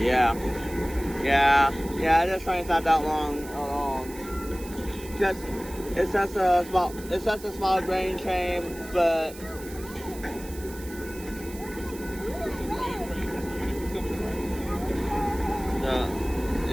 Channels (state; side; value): noise; right; hiss, 17 dB below the sound